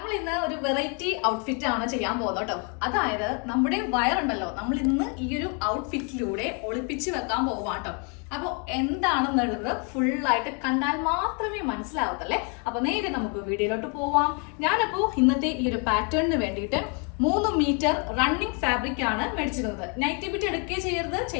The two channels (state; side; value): quieter; right; 36.7 dB